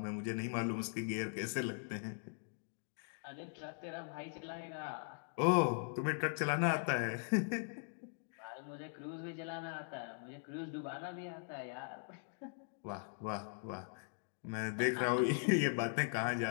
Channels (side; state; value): right; silent; digital silence